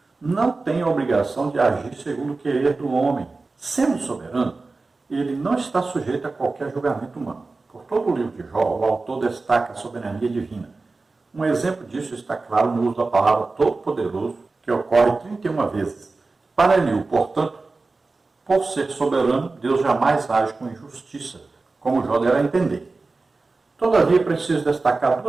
não tem a obrigação de agir segundo o querer do homem. Sendo soberano, ele não está sujeito a qualquer julgamento humano. Por todo o livro de Jó, o autor destaca a soberania divina. Um exemplo disso está claro no uso da palavra todo-poderoso, que ocorre 31 vezes. Para Eliú, portanto, por ser soberano, Deus jamais age com injustiça, como Jó deve entender. Todavia, preciso destacar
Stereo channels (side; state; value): left; quieter; 3.7 dB